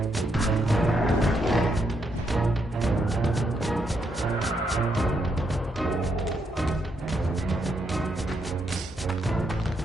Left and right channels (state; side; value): normal; both; correlation 0.78